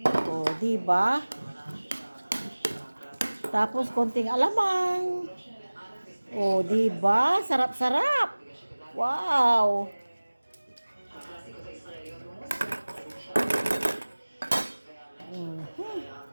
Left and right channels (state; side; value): inverted; both; correlation -1.00